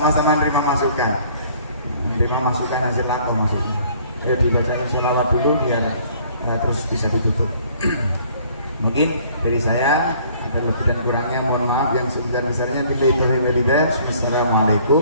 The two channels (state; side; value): inverted; both; correlation -0.57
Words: menerima masukan hasil aku maksudnya. Dibacakan sholawat dulu biar terus bisa ditutup. Mungkin dari saya ada lebih dan kurangnya mohon maaf yang sebesar-besarnya.